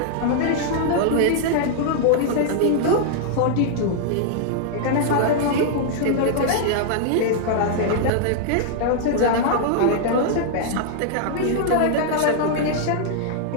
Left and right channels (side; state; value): both; different; correlation -0.01